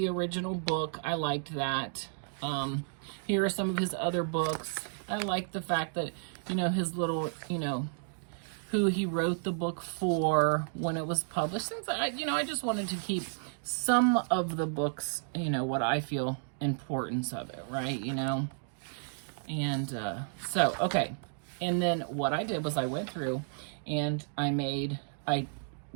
original book. I liked that. Here are some of his other books. I like the fact that, you know, his little, you know, who he wrote the book for, when it was published. Things I just wanted to keep some of the books, you know, what I feel importance of it, right? You know, and so okay, and then what I did was I went through and I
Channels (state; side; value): silent; left; digital silence